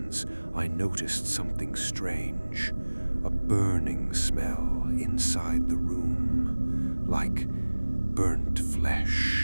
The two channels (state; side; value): inverted; both; correlation -1.00